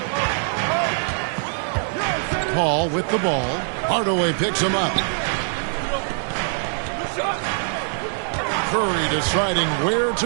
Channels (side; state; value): left; silent; digital silence